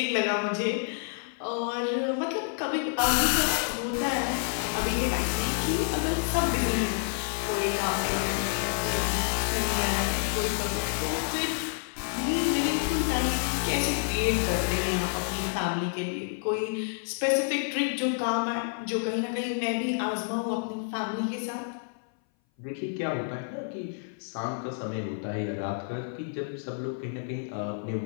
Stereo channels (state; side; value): silent; right; 57 dB below the other